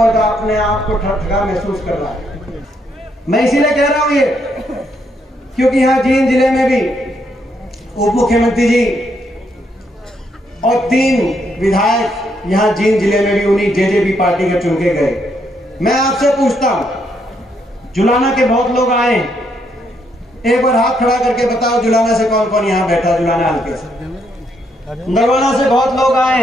अपने आप को ठगा महसूस कर रहा है। मैं इसीलिए कह रहा हूं ये, क्योंकि यहाँ जींद जिले में भी उप मुख्यमंत्री जी और 3 विधायक यहाँ जींद जिले में भी उन्हीं जेजेपी पार्टी के चुन के गए। मैं आपसे पूछता हूं, जुलाना के बहुत लोग आए, एक बार हाथ खड़ा करके बताओ जुलाना से कौन कौन यहाँ बैठा? जुलाना हल्के से, नरवाना से बहुत लोग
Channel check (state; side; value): normal; both; correlation 0.75